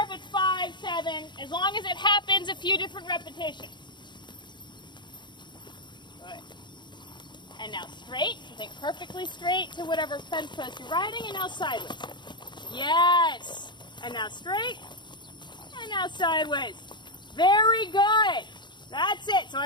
if it's 5, 7, as long as it happens a few different repetitions. Good. And now straight, so think perfectly straight to whatever fence post you're riding, and now sideways. Yes! And now straight, and now sideways. Very good. That's it. So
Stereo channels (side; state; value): right; late; 0.22 ms